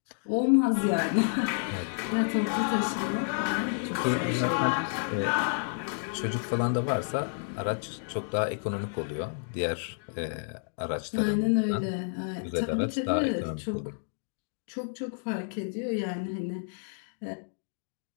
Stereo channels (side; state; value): right; silent; digital silence